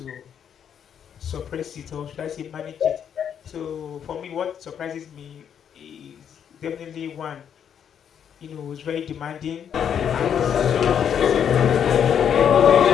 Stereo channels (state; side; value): quieter; right; 8.4 dB